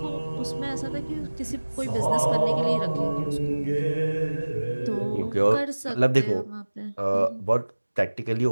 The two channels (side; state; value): both; inverted; correlation -1.00